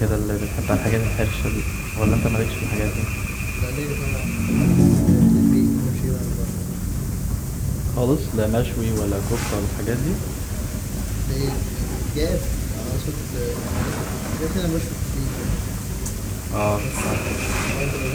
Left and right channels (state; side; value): identical; both; correlation 1.00